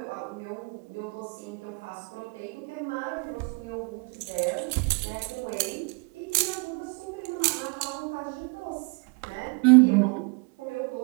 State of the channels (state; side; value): quieter; left; 33.0 dB